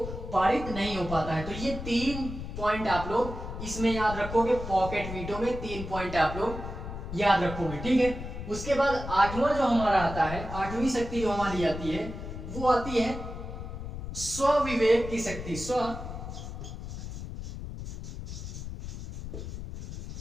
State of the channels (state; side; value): noise; left; rumble, 8 dB below the sound